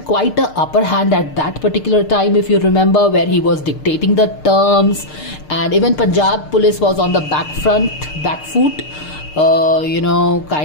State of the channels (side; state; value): right; late; 6.6 ms